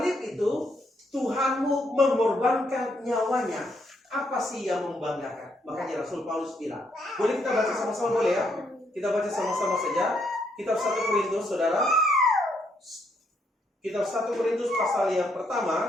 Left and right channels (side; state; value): both; normal; correlation 0.74